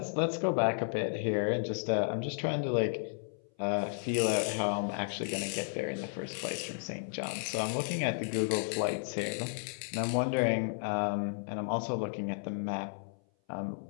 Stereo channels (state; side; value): silent; right; 56 dB below the other